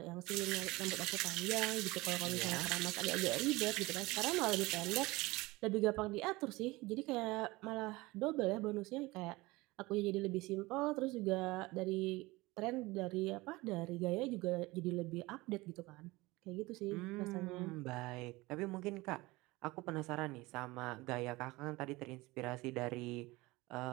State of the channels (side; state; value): left; quieter; 21.5 dB